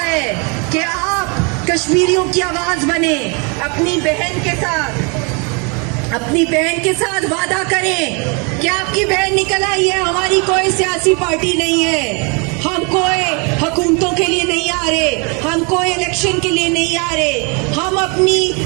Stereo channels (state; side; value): quieter; left; 33.2 dB